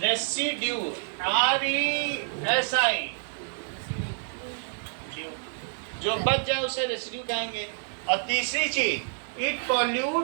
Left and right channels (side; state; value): left; silent; digital silence